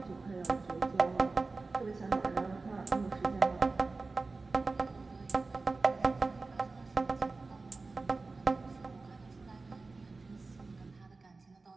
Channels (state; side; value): quieter; left; 3.7 dB